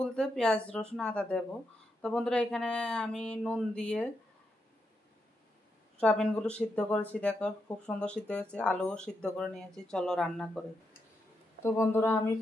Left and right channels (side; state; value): both; normal; correlation 0.83